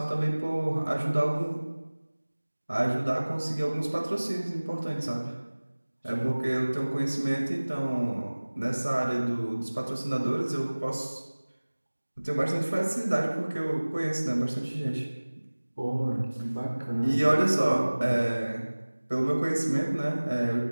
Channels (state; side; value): inverted; both; correlation -1.00